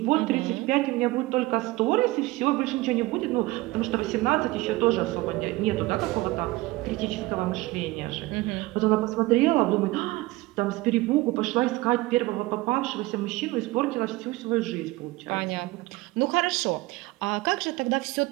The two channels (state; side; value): quieter; left; 20.3 dB